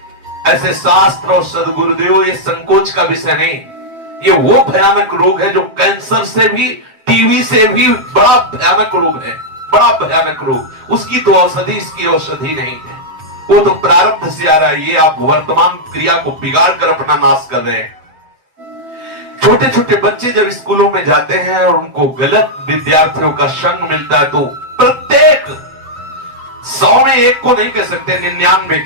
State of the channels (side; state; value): left; late; 7.7 ms